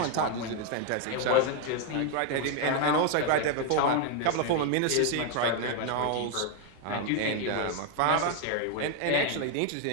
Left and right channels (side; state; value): both; different; correlation 0.01